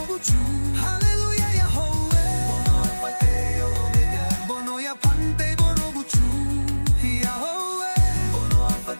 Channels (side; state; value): both; inverted; correlation -1.00